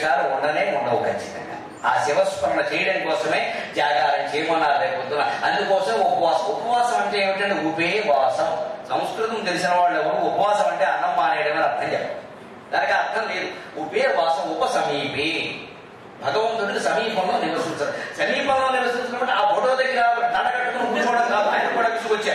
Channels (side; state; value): both; identical; correlation 1.00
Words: ఉండవు ఖచ్చితంగా. ఆ శివస్మరణ చేయడం కోసమే జాగారం చేయమన్నారు రేపొద్దున. అందుకోసం ఉపవాసం అంటే ఏమిటంటే ఉపేవాసం. సంస్కృతం తెలిసిన వాళ్ళు ఎవరు ఉపవాసం అంటే అన్నం మానేయడమని అర్థం చెప్పారు. దానికి అర్థం లేదు. ఉపేవాసం ఉపసమీపే, భగవంతుడికి సమీపంలో నివసించారు. సమీపంలో నివసించినప్పుడు ఆ ఫోటో దగ్గర దండకట్టుకుని కూర్చోవడం కాదు, ఆయన కూడా